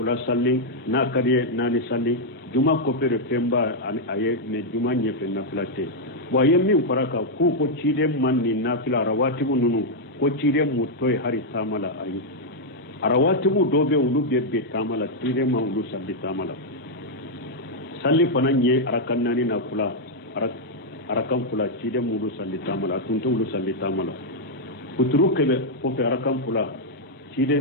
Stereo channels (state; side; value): normal; both; correlation -0.03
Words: salli na kariye nani salli juma ko fe femba aye ne juma nye fe nafila te bo yemmi faraka ku ko cide man ni nafila rawatibu nunu ko cide mu toy hari tamala ayi arawatibu dobe ulu be tamala cide ma ulu salli tamala salli fana nye arakannani na kula arakan kula cide mu ulu salli tamala tunto ulu salli tamala kuturu kebe ko fe arakan kula cide